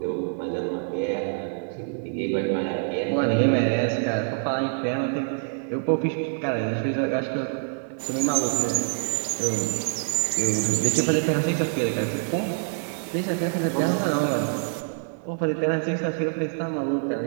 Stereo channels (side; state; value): left; silent; digital silence